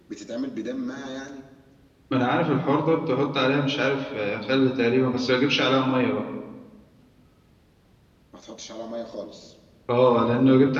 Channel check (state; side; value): identical; both; correlation 1.00